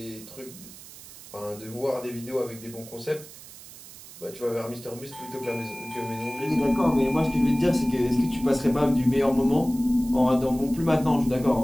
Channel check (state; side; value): noise; right; hiss, 17 dB below the sound